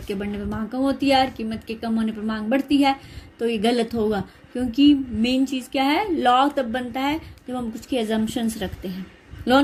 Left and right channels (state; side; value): identical; both; correlation 1.00